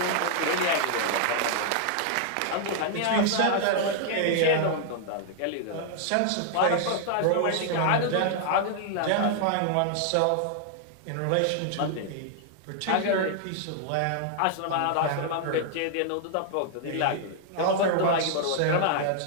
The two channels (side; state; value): both; different; correlation 0.00